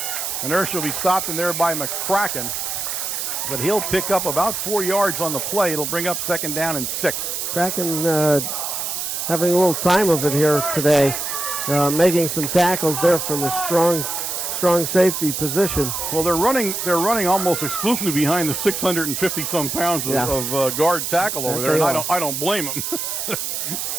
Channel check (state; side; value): noise; right; hiss, 3 dB below the sound